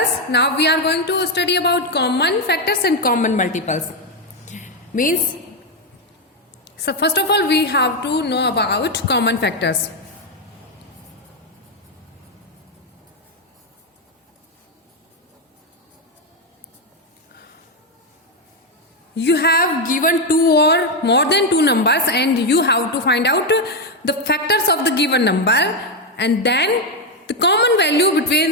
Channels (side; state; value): both; normal; correlation 0.05